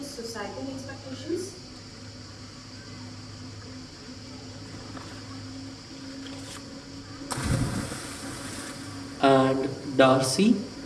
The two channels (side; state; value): both; identical; correlation 1.00